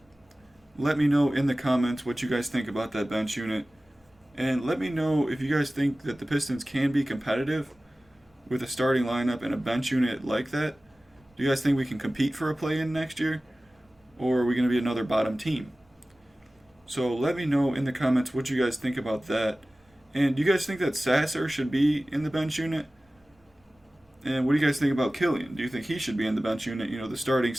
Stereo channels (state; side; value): normal; both; correlation 0.97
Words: Let me know in the comments what you guys think about that bench unit. And let me know if you guys think that the Pistons can be competitive with a starting lineup and a bench unit like that. Do you guys think we can compete for a play-in next year? Or are we going to be another bottom team? So let me know in the comments what you guys think about that. And do you guys think that Sasser should be in the bench unit? And what do you guys think about Killian? Do you think he should be in the bench unit? You know, the starting